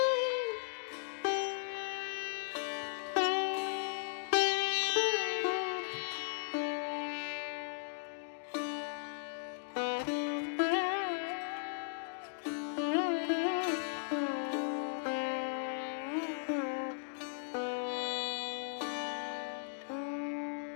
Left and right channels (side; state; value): right; silent; digital silence